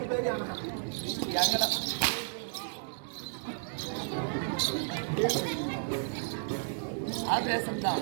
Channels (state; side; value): silent; left; 56 dB below the other